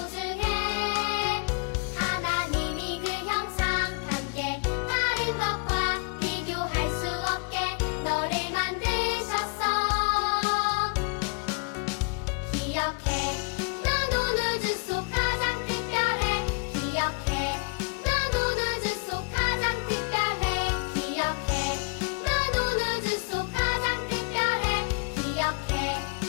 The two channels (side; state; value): right; quieter; 34.4 dB